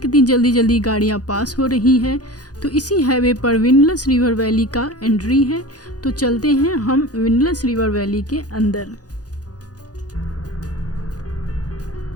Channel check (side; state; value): right; late; 0.68 ms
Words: कितनी जल्दी जल्दी गाड़ियाँ पास हो रही हैं। तो इसी हाईवे पर विंडलेस रिवर वैली का एंट्री है। तो चलते हैं हम विंडलेस रिवर वैली के अंदर।